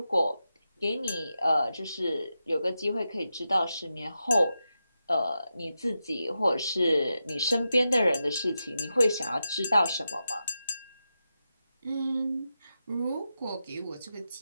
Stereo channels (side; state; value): both; inverted; correlation -0.89